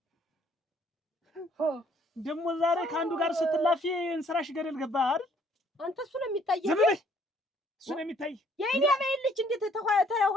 ደግሞ ዛሬ ከአንዱ ጋር ስትላፊ እንስራሽ ገደል ገባ አይደል? አንተ እሱ ነው የሚታየው። እሱ ነው የሚታይ። የኔ አበባ ልጅ እንዴት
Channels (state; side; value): normal; both; correlation 0.63